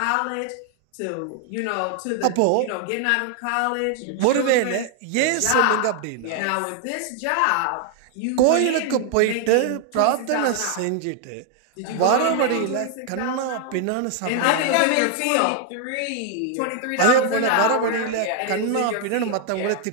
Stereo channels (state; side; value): different; both; correlation 0.00